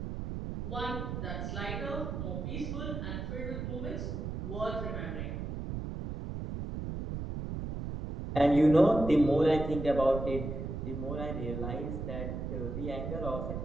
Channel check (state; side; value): noise; right; rumble, 5 dB below the sound